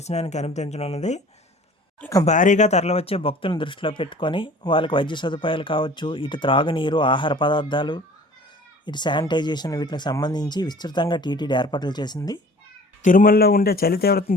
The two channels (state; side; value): normal; both; correlation 0.47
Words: అనుమతించనున్నది. ఇక భారీగా తరలివచ్చే భక్తులను దృష్టిలో పెట్టుకొని వాళ్ళకి వైద్య సదుపాయాలు కావచ్చు, ఇటు త్రాగునీరు, ఆహార పదార్థాలు, ఇటు శానిటైజేషన్ వీటికి సంబంధించి విస్తృతంగా టీటీడీ ఏర్పాట్లు చేసింది. తిరుమలలో ఉండే చలి తీవ్రతను